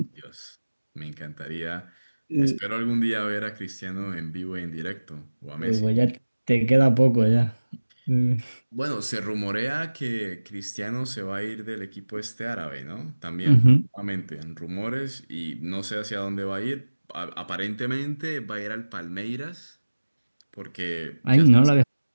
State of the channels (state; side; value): inverted; both; correlation -1.00